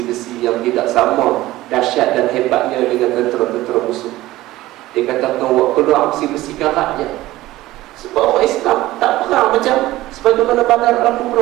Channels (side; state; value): left; quieter; 16.9 dB